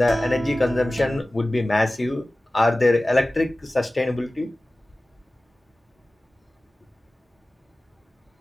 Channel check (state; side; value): normal; both; correlation 0.97